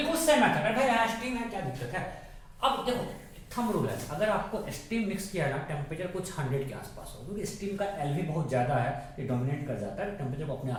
सेम मेथड है. भाई स्टीम है, क्या दिक्कत है? अब देखो थंब रूल है. अगर आपको स्टीम मिक्स किया ना, टेम्परेचर कुछ 100 के आसपास हो, क्योंकि स्टीम का एलवी बहुत ज्यादा है, ये डोमिनेट कर जाता है, टेम्परेचर को अपने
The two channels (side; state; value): both; identical; correlation 1.00